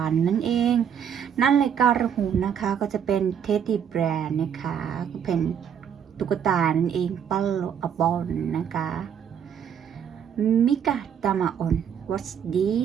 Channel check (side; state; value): left; quieter; 8.3 dB